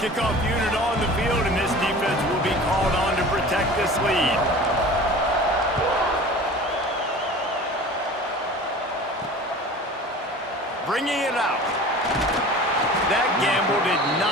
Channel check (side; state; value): both; normal; correlation 0.40